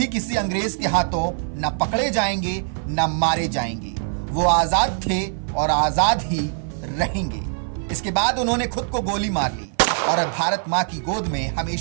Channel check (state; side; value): silent; left; 55 dB below the other